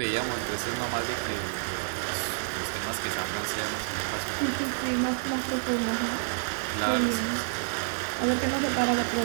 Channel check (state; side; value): silent; left; digital silence